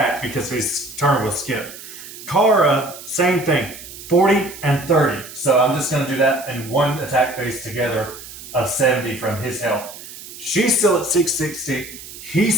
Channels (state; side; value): noise; right; hiss, 14 dB below the sound